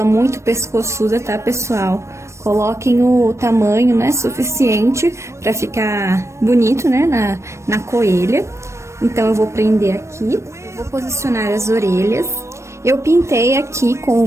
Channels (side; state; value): left; late; 0.13 ms